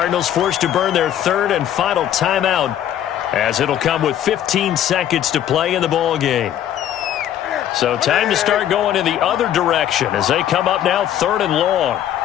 forced to burn their third and final timeout, as it'll come with 15 seconds to play in the ball game. So time to start going in the other direction as they come up now 3rd and long.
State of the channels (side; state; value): right; quieter; 11.0 dB